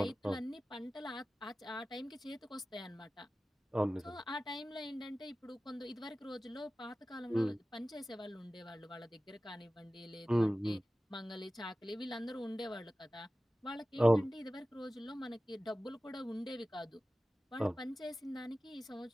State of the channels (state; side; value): normal; both; correlation 0.96